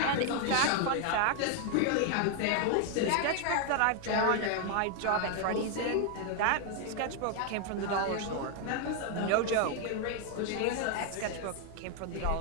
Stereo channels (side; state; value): both; different; correlation 0.00